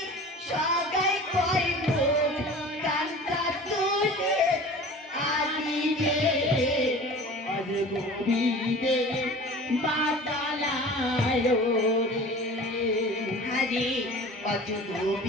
সাগাই কইব কান্তা তুলে আলি রে আজ গোবিন্দে বাতালায় রে হরি অজ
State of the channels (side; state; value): both; normal; correlation 0.40